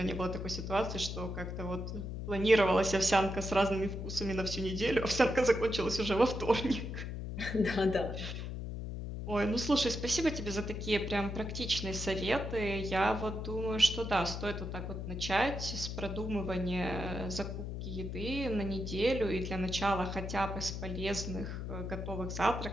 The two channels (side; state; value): left; noise; hum, 5 dB below the sound